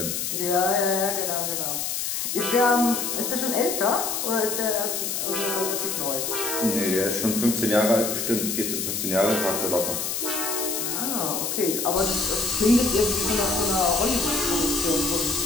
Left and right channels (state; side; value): noise; left; hiss, 2 dB below the sound